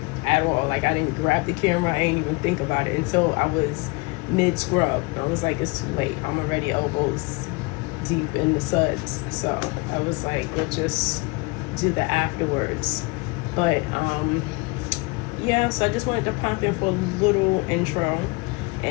at all. Like, I didn't grab the camera, I didn't even think about it until I was mid-scrub. I was like, it's too late. I'm already elbows deep in the suds. So I was like, we'll just do the afterwards. But yeah, so I just wanted to pop in for a little intro.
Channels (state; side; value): quieter; right; 27.6 dB